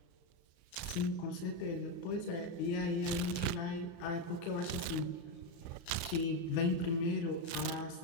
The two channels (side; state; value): right; late; 34 ms